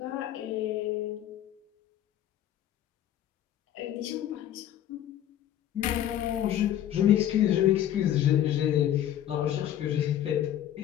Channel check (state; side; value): quieter; right; 11.3 dB